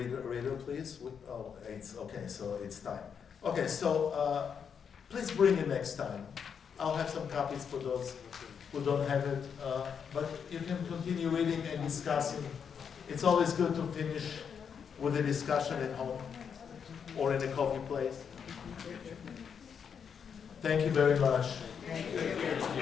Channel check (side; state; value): right; quieter; 7.0 dB